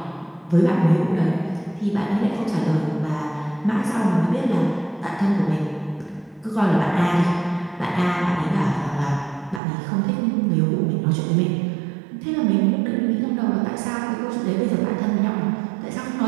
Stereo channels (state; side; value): drops out; left; at 9.6 s